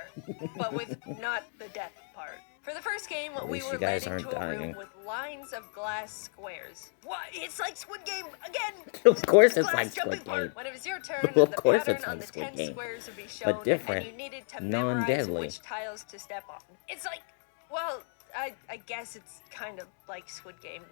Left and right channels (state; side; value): silent; right; 56 dB below the other